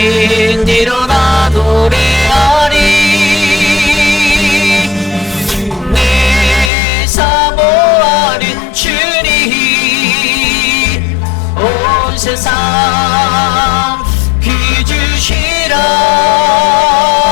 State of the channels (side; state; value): right; drops out; at 6.7 s